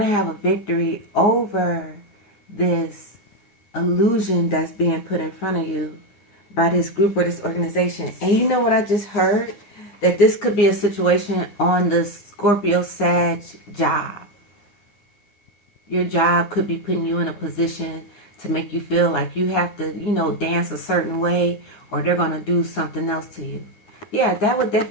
have a victory over this illusion that's being put in front of you by this group or this organization. And you know what I just heard? That this could be a situation on the Scorpio, Sag job. Your job could be putting you in a position to make you feel like you have to, you know, dance a certain way or they're going to do something else to you. Yeah, that would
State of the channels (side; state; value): right; late; 9.9 ms